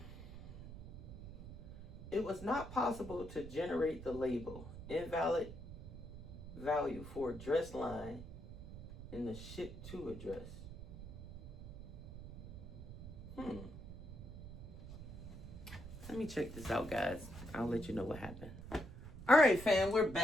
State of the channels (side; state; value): right; noise; rumble, 12 dB below the sound